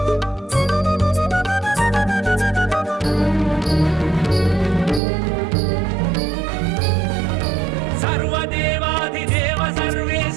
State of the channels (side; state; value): left; drops out; at 5.0 s